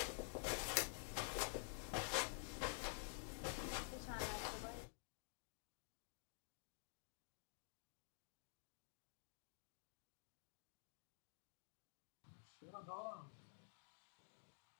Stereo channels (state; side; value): silent; right; digital silence